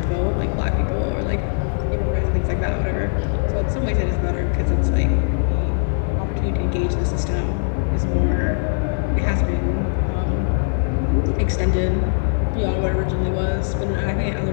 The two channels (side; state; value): right; silent; digital silence